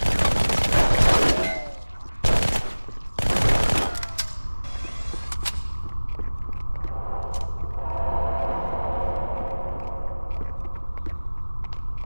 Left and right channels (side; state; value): both; inverted; correlation -1.00